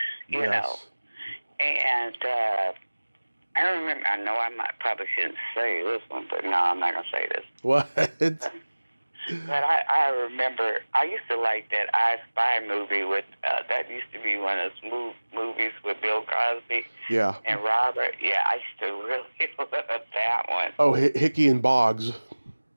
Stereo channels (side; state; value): both; inverted; correlation -1.00